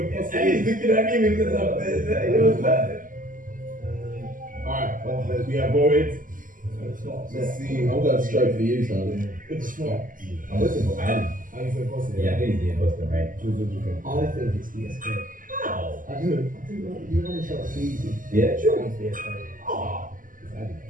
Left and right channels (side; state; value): left; late; 0.39 ms